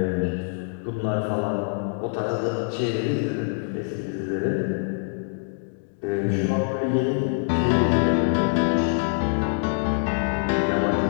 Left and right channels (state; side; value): silent; right; digital silence